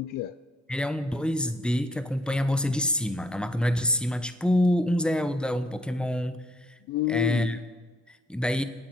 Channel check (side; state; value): both; normal; correlation 0.68